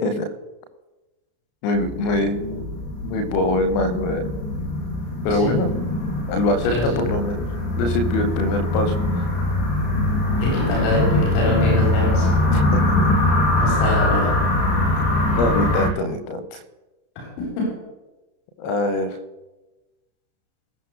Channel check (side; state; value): right; late; 34 ms